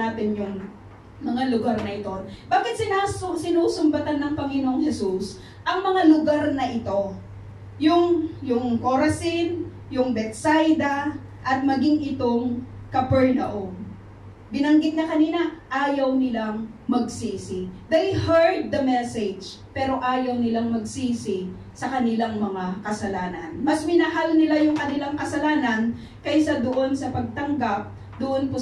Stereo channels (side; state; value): both; identical; correlation 1.00